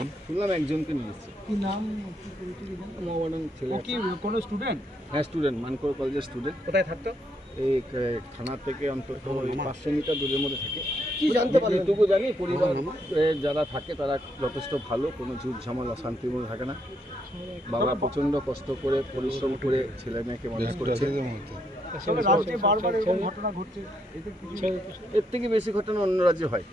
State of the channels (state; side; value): normal; both; correlation 0.76